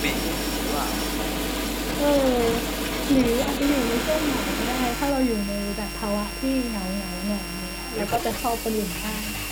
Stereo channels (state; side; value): identical; both; correlation 1.00